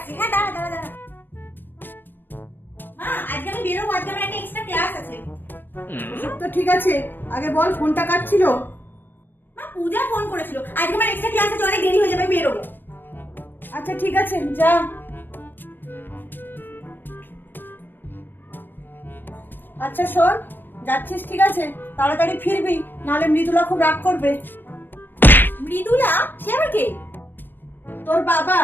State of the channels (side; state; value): right; late; 0.094 ms